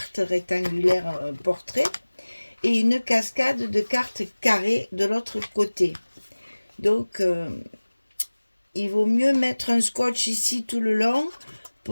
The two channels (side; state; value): both; inverted; correlation -1.00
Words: rectangulaires portrait et une cascade de cartes carrées de l'autre côté. Donc, il vaut mieux mettre un scotch ici tout le long